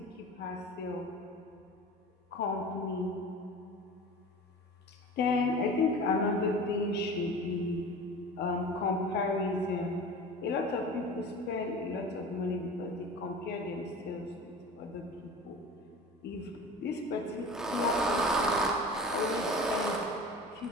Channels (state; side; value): normal; both; correlation 0.37